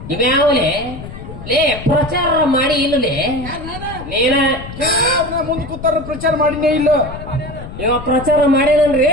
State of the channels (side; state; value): left; noise; rumble, 12 dB below the sound